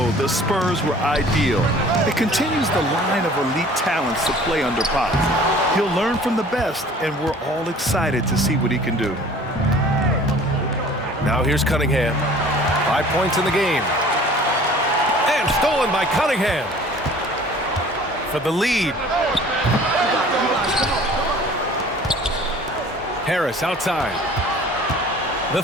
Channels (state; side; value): normal; both; correlation 0.48